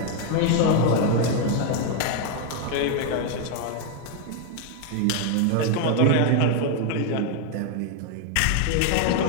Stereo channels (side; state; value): both; different; correlation 0.01